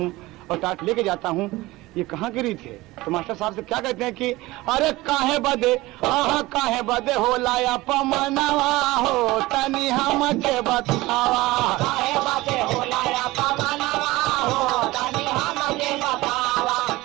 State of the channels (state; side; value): quieter; left; 19.5 dB